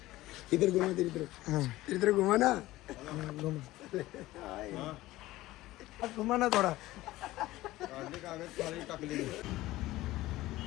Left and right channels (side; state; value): right; quieter; 17.2 dB